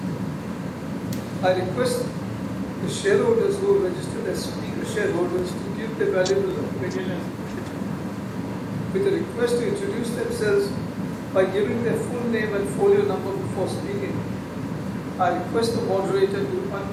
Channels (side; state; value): both; identical; correlation 1.00